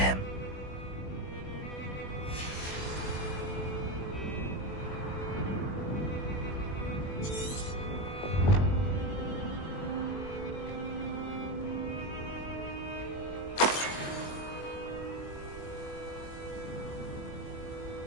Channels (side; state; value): right; late; 21 ms